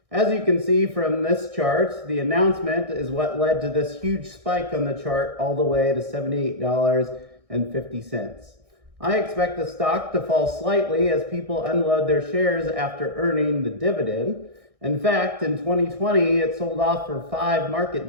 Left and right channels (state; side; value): late; left; 1.6 ms